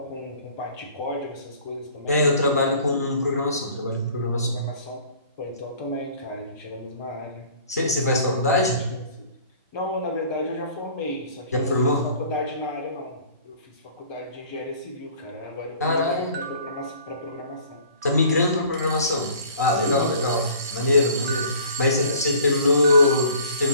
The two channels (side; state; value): both; inverted; correlation -0.51